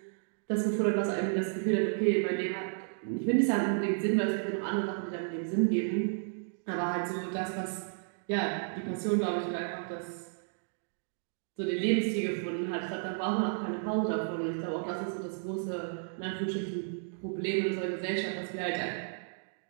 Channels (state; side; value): silent; left; digital silence